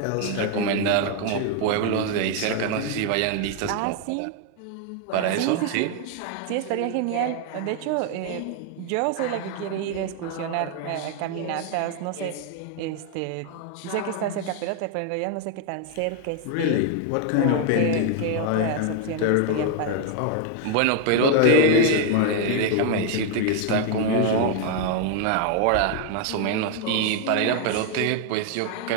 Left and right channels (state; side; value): different; both; correlation 0.00